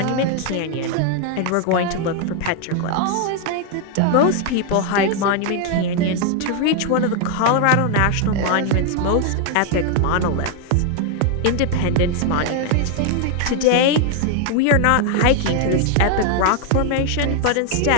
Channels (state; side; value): different; both; correlation 0.00